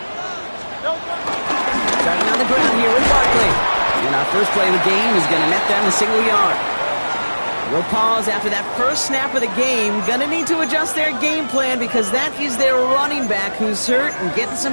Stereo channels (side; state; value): both; inverted; correlation -1.00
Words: Starting on the ground here with Barkley. And our first play of the game is going to net them a single yard. We'll pause after that first snap of the game. Going to need to adjust their game plan because that is their running back who's hurt and getting